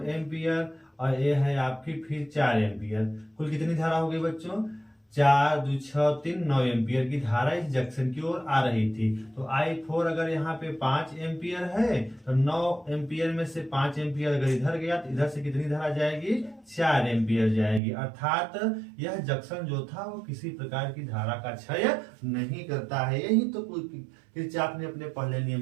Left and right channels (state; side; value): drops out; left; at 17.8 s